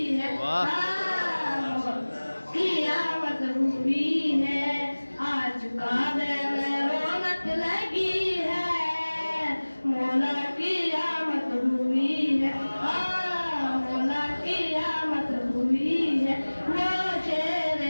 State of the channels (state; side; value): inverted; both; correlation -1.00